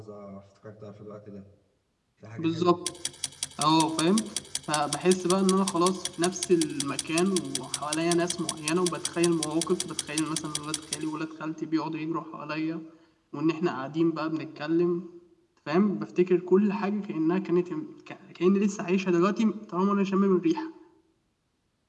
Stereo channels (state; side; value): identical; both; correlation 1.00